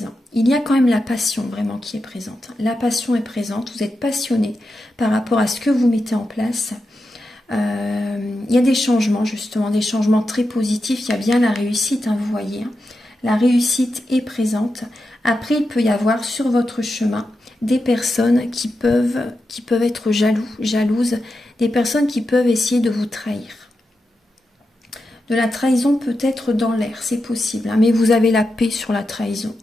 Il y a quand même la passion vraiment qui est présente. La passion est présente, vous êtes passionné par rapport à ce que vous mettez en place. Il y a des changements justement, des changements très positifs. Il y a bien la réussite, vous voyez. La réussite est présente. Après, il peut y avoir sur votre chemin des personnes qui peuvent être jalouses, des personnes qui peuvent essayer de vous trahir. De la trahison peut-être dans l'air, c'est possible, mais vous avez la paix sur la trahison.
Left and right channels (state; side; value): normal; both; correlation 0.89